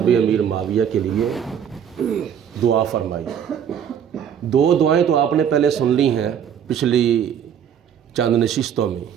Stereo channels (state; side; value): quieter; left; 8.6 dB